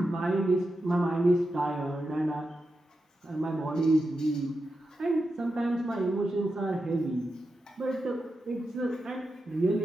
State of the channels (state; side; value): normal; both; correlation 0.89